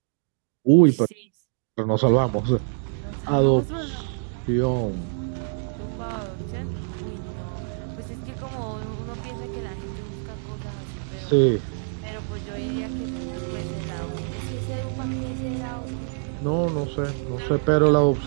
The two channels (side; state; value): left; silent; digital silence